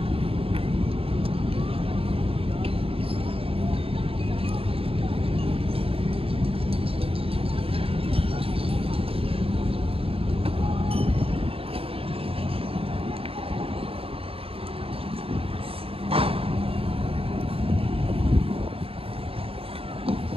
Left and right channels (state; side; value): late; left; 0.27 ms